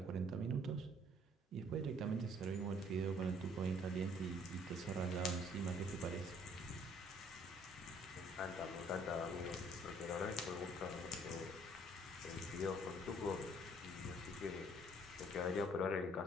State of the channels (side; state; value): both; normal; correlation 0.60